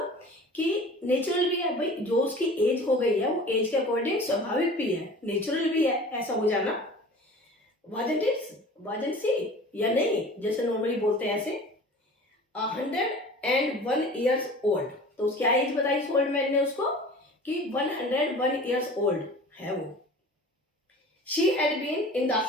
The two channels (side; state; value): both; normal; correlation 0.41